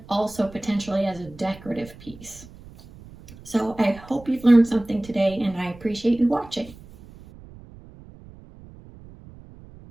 also potentially as a decorative piece. So I hope you've learned something today, and I appreciate you watching.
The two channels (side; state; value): right; noise; rumble, 20 dB below the sound